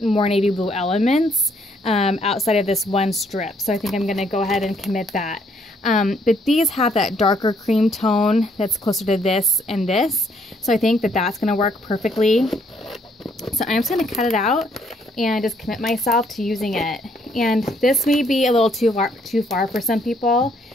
navy blue elements outside of this one strip. So I think I'm going to go ahead and commit that. But these have that darker cream tone that's closer to this and this. So I think that that's going to work perfectly. So I'm just going to cut it out and just commit myself to using it. And this may be a little too far for some people.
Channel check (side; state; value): both; normal; correlation 0.68